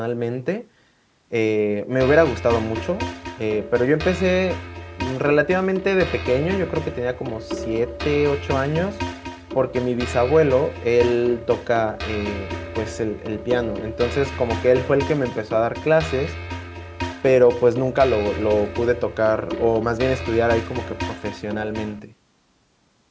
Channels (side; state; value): both; identical; correlation 1.00